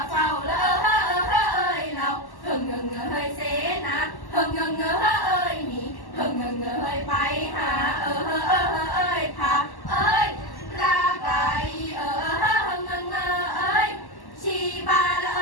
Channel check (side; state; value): right; late; 1.1 ms